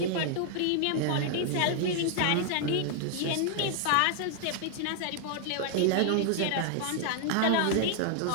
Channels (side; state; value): both; different; correlation 0.00